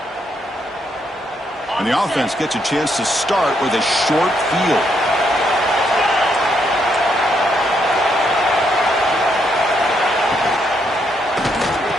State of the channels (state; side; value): normal; both; correlation 0.76